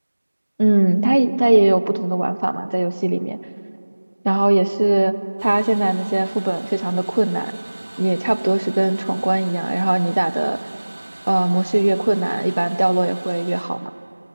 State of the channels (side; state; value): both; inverted; correlation -1.00